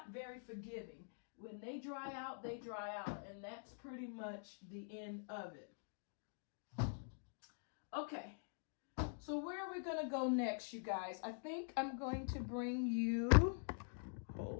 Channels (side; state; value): right; silent; digital silence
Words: very forgiving. When they dry out, they dry out. And that's pretty much the end of it. Okay. So where are we going to go next, you guys? I think I'm going to bring you,